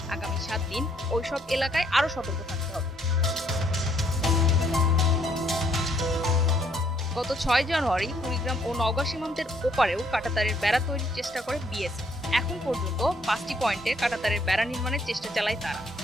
আগামী 7 দিন ওইসব এলাকায় আরও সতর্ক থাকতে হবে। গত 6 জানুয়ারি কুড়িগ্রাম ও নওগাঁ সীমান্তের ওপারেও কাঁটাতারের বেড়া তৈরির চেষ্টা করে বিএসএফ। এখন পর্যন্ত 5টি পয়েন্টে কাঁটাতারের বেড়া নির্মাণের চেষ্টা চালায় তারা।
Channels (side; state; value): both; normal; correlation 0.68